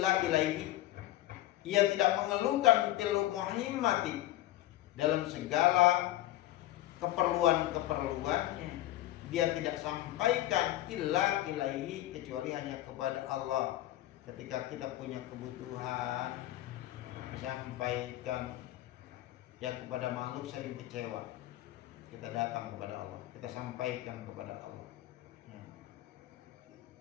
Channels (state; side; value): quieter; right; 15.1 dB